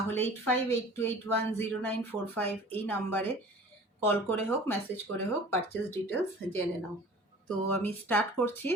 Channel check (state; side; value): normal; both; correlation 0.44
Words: 8582810945 এই নাম্বারে কল করে হোক, মেসেজ করে হোক, পারচেস ডিটেলস জেনে নাও। তো আমি স্টার্ট করছি